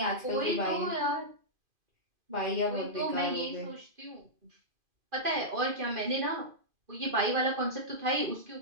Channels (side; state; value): left; late; 2.5 ms